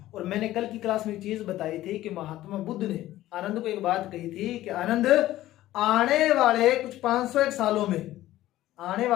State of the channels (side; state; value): right; quieter; 14.9 dB